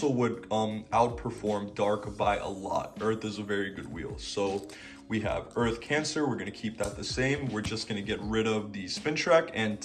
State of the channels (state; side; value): identical; both; correlation 1.00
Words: would outperform Dark by a lot. Earth is a very good wheel. So we have Earth Cancer. We're going to keep that the same. We're just going to get rid of the spin track and